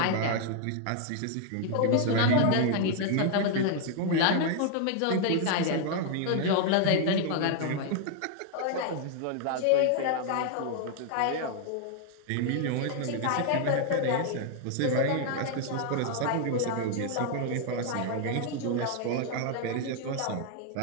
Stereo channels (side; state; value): both; different; correlation 0.00